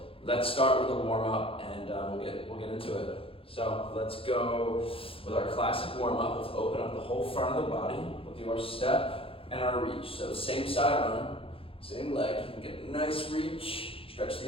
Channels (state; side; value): late; right; 0.27 ms